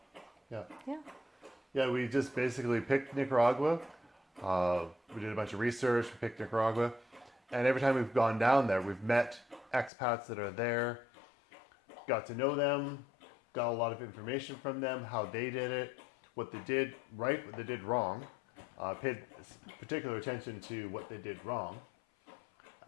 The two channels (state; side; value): drops out; right; at 9.9 s